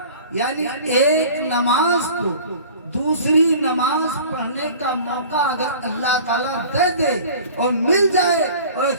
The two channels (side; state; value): both; inverted; correlation -0.43